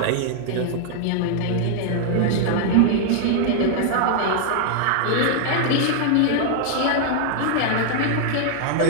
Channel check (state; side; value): different; both; correlation -0.01